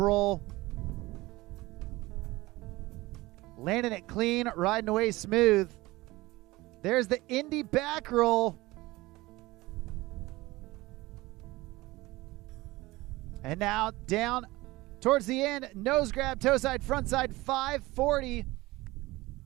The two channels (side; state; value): left; quieter; 20.0 dB